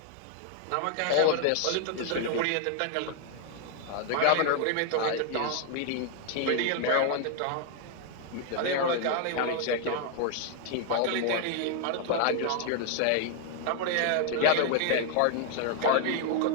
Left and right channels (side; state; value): both; different; correlation 0.00